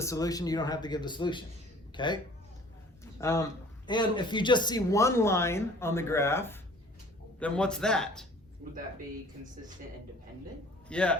solution. You don't have to give the solution, okay? And if you just see one line on the graph, then what's that? Would that be consistent and dependent?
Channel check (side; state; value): both; normal; correlation 0.50